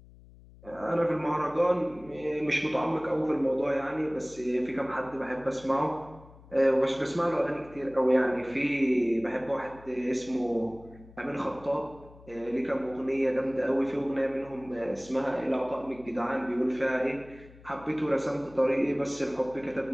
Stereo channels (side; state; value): left; noise; hum, 22 dB below the sound